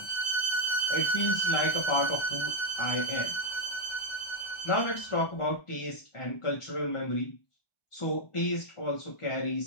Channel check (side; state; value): right; late; 1.3 ms